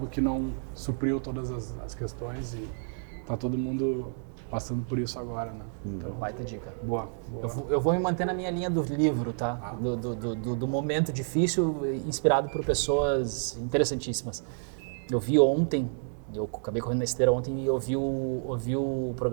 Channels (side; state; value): left; silent; digital silence